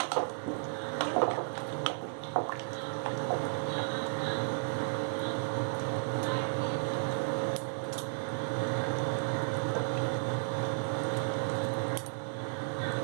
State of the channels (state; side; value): silent; left; digital silence